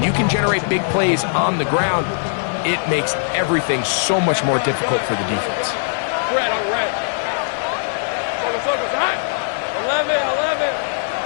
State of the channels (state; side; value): silent; right; digital silence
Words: you can generate big plays on the ground, it makes everything so much more difficult for the defense. Red, on red. Focus, hot. 11.